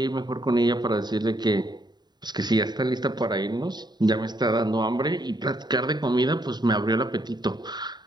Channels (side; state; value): left; late; 0.20 ms